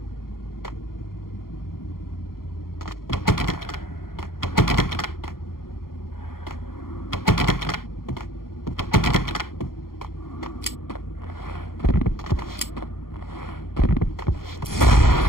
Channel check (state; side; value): late; right; 0.92 ms